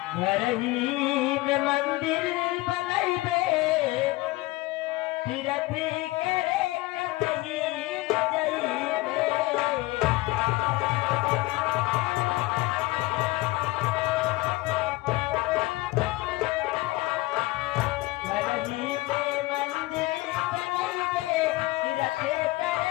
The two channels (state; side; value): quieter; right; 20.0 dB